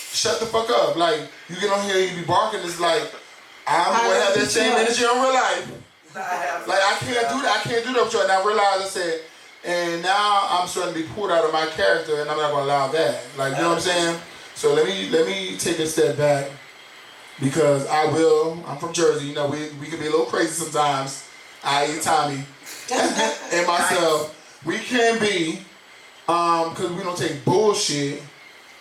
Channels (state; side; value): identical; both; correlation 1.00